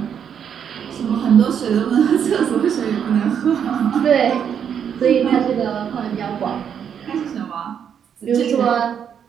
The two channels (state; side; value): quieter; left; 8.1 dB